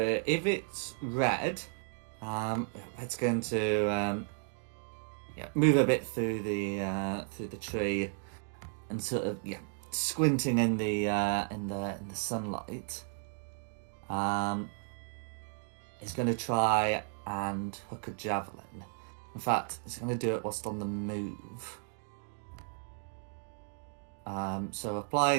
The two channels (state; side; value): silent; left; 55 dB below the other